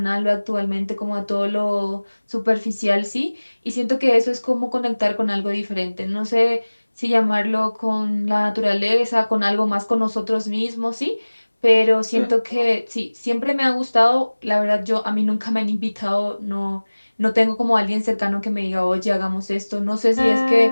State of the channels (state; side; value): inverted; both; correlation -1.00